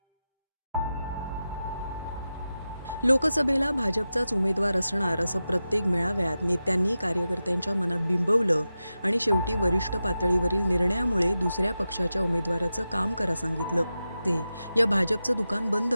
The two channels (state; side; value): inverted; both; correlation -0.92